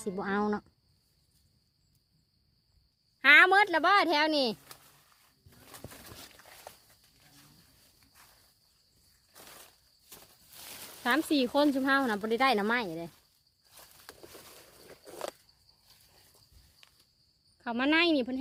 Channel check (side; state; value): both; identical; correlation 1.00